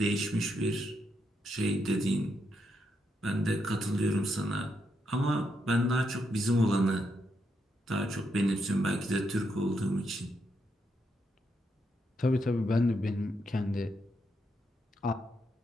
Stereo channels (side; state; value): both; normal; correlation 0.80